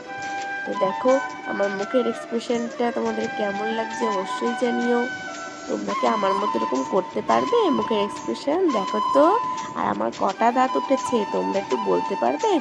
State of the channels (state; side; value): identical; both; correlation 1.00